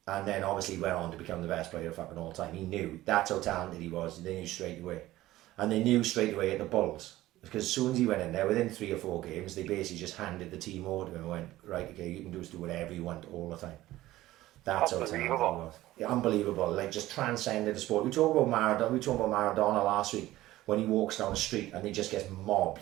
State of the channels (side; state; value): left; quieter; 16.1 dB